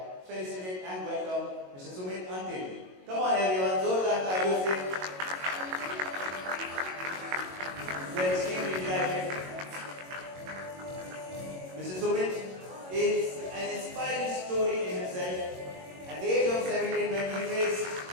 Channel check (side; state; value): left; late; 22 ms